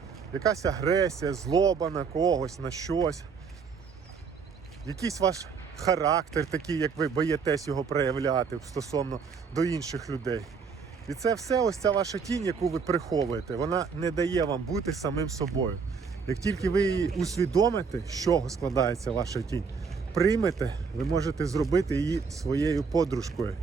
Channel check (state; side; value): quieter; left; 5.6 dB